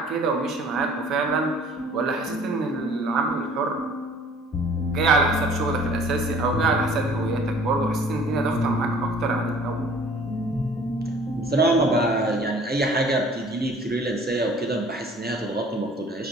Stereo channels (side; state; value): both; normal; correlation 0.52